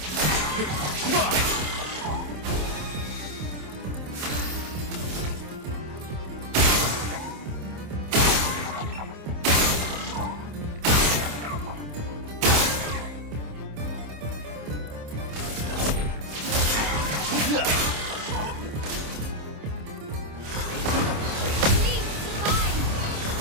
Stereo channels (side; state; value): left; late; 27 ms